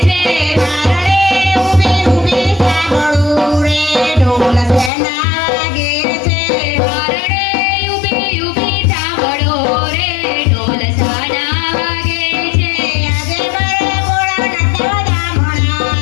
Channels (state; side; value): drops out; right; at 4.9 s